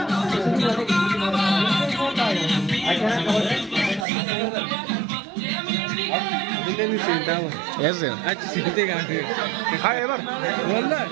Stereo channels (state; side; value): drops out; left; at 4.0 s